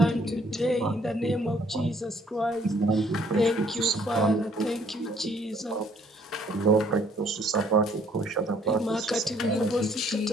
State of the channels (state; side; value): normal; both; correlation 0.63